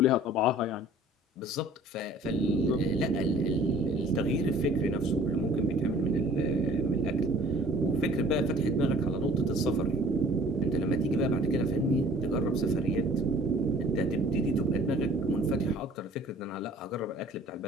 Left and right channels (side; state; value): both; normal; correlation 0.51